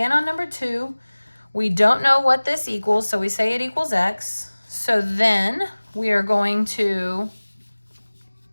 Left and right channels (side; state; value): both; inverted; correlation -1.00